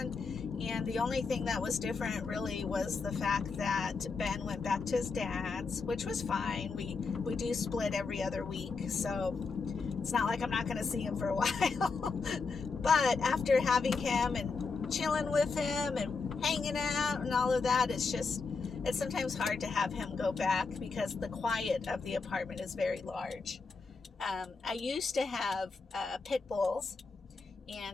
and the only thing that was different really was the fact that Ben went back to his dad's, which was fine. We do split every other week, so it's not like I'm not going to see him for a while. But after having him and chilling with him and hanging out and all of that, it's sometimes hard to have him go back because the quiet of the apartment is very large. I used to have pit bulls,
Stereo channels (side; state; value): right; quieter; 4.5 dB